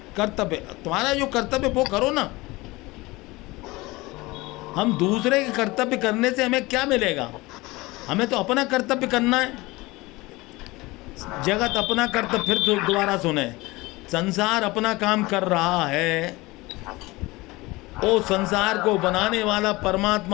कर्तव्य। तुम्हारा जो कर्तव्य वो करो ना। हम दूसरे के कर्तव्य करने से हमें क्या मिलेगा? हमें तो अपना कर्तव्य करना है। जगत अपना कर्तव्य, फिर दोबारा सुने, संसार अपना काम कर रहा है, वो संसार को बनाने वाला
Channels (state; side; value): quieter; right; 21.6 dB